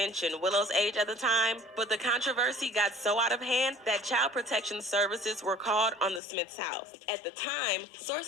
Willow's age at the time. But the controversy got so out of hand that Child Protection Services were called on the Smiths' house. At the time,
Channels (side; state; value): right; drops out; at 6.2 s